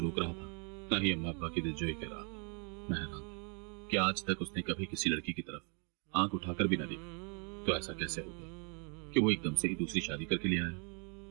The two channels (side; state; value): left; quieter; 36.7 dB